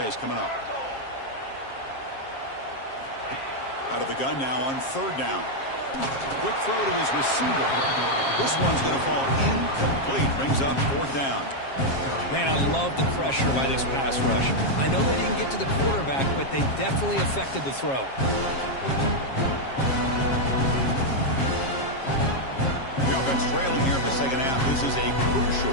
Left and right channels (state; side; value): late; right; 7.4 ms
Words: coming up. Out of the gun now on 3rd down. Quick throw to his receiver. This one's going to fall incomplete. Brings up 4th down. Man, I love the pressure by this pass rush. I know they didn't get to the quarterback, but they definitely affected the throw. The offense trailing here in the 2nd half. This is a